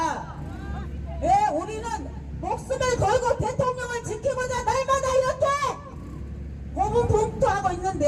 예, 우리는 목숨을 걸고 대통령을 지키고자 날마다 이렇게 고군분투하고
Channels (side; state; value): both; identical; correlation 1.00